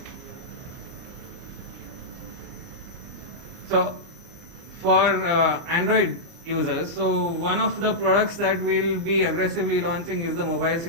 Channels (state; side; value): late; left; 29 ms